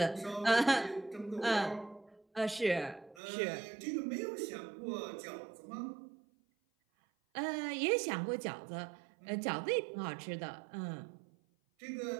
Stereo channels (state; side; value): drops out; left; at 3.2 s